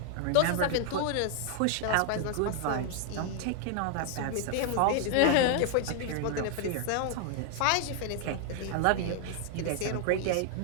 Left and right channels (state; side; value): different; both; correlation 0.00